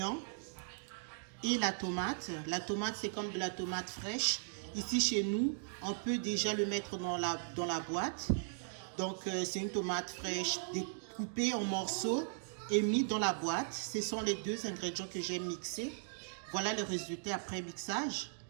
et la tomate. La tomate, c'est comme de la tomate fraîche. Ici, chez nous, on peut déjà le mettre dans la boîte. Donc, c'est une tomate fraîche découpée en morceaux et mis dans la boîte. Ce sont les 2 ingrédients que j'ai mixés. Voilà le résultat après mixage.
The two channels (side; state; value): left; silent; digital silence